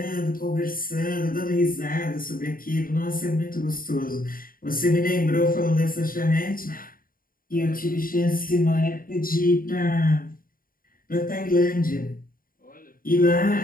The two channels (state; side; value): late; right; 0.41 ms